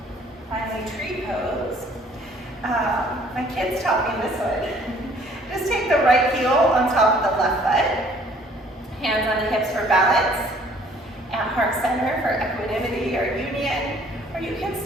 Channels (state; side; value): normal; both; correlation 0.58